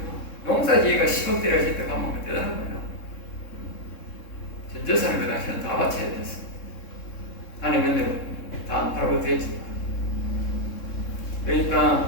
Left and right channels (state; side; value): late; right; 3.7 ms